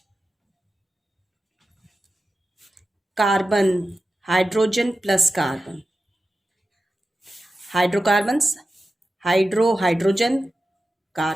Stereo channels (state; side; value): normal; both; correlation 0.93